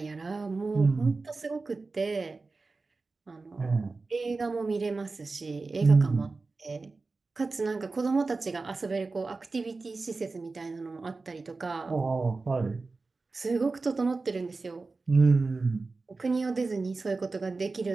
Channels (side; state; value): left; quieter; 3.8 dB